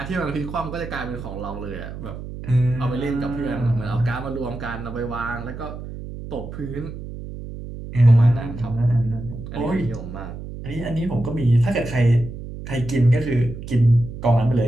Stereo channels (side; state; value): right; noise; hum, 10 dB below the sound